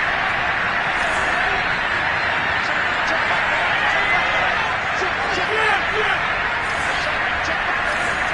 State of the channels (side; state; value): both; identical; correlation 1.00